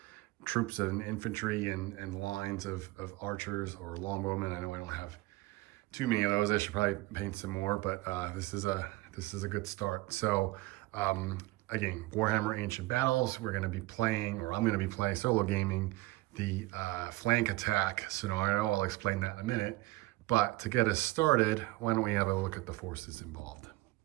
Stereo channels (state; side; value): quieter; left; 20.6 dB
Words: troops and infantry and lines of archers or longbowmen. I know I don't have too many of those. I should probably paint some more, but this is a good start. So again, Warhammer Ancient Battles, we're going to be playing, or I'm going to be playing solo gaming the flank attack scenario. I'll explain that in a minute. But to get us started, why don't we have a look at the forces involved?